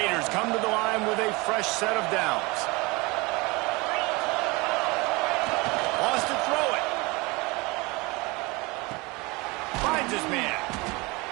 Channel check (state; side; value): quieter; left; 25.1 dB